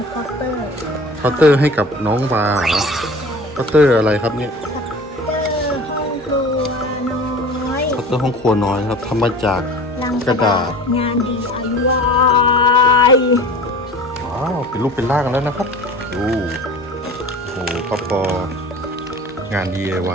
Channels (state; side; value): normal; both; correlation 0.40